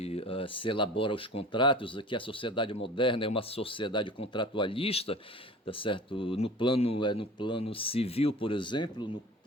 elabora os contratos, que a sociedade moderna é uma sociedade contratualista, tá certo? No plano civil, por exemplo, no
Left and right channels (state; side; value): normal; both; correlation 0.40